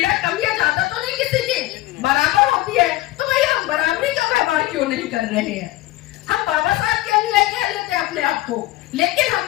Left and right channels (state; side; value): quieter; right; 17.0 dB